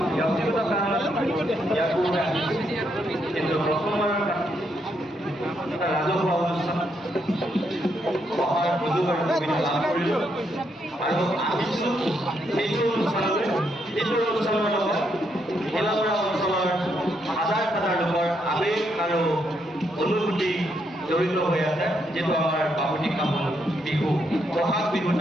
ব্যক্তিগত কাৰণত ইয়াৰ পূৰ্বে আহিছোঁ, কিন্তু প্ৰথমবাৰৰ এটা ৰাজহুৱা অনুষ্ঠান অহাৰ সুযোগ আৰু সুবিধা লাভ কৰিলোঁ আৰু আহিছোঁ সেইটো অনুষ্ঠানলৈ, যিটো অনুষ্ঠানৰ লগত ভেলাগড়া অঞ্চলৰ হাজাৰ হাজাৰ লোকৰ আৱেগ আৰু অনুভূতি জড়িত হৈ আছে, যিটো আমাৰ বাপতিসাহোন বিহু, বহাগ বিহুত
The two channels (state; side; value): normal; both; correlation 0.77